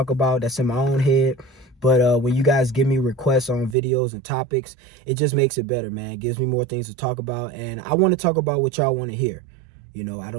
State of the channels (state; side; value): drops out; left; at 3.8 s